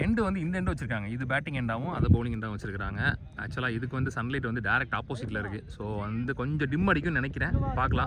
எண்டு வந்து இந்த எண்டு வச்சிருக்காங்க, இது பேட்டிங் எண்டாகவும் அதை பவுலிங் எண்டாகவும் வச்சிருக்காங்க. ஆக்சுவலாக இதுக்கு வந்து சன்லைட் வந்து டேரக்ட் ஆப்போசிட்டில் இருக்குது. ஸோ வந்து கொஞ்சம் டிம் அடிக்கும்னு நினைக்கிறேன்,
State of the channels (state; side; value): identical; both; correlation 1.00